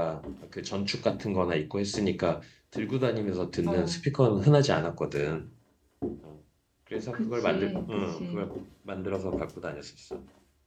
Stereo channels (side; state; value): both; identical; correlation 1.00